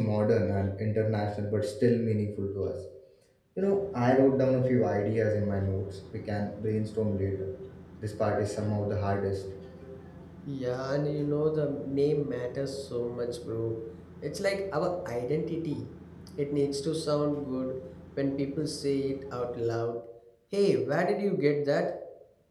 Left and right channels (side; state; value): both; identical; correlation 1.00